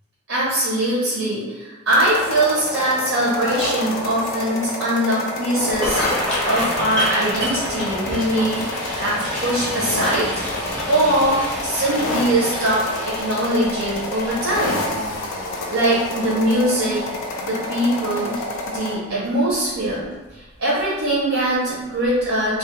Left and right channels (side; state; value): both; normal; correlation 0.09